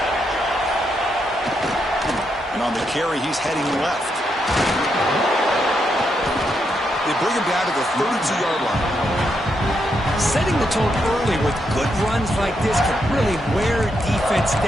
And on the carry, he's heading left. They bring him down to the 32-yard line. Setting the tone early with good runs like this can really wear defense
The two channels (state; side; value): normal; both; correlation 0.80